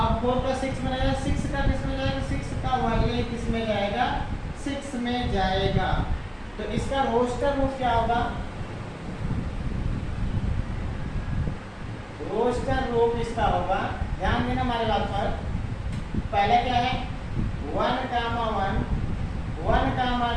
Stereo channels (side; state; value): both; identical; correlation 1.00